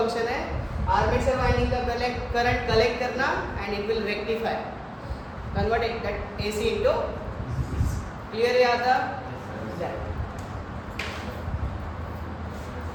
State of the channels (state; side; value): identical; both; correlation 1.00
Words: है. Armature winding का current collect करना and it will rectify, convert that AC into. Clear है आता?